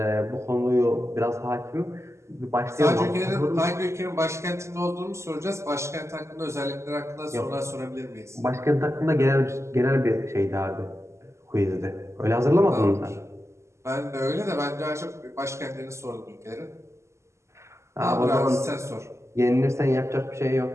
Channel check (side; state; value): left; late; 0.13 ms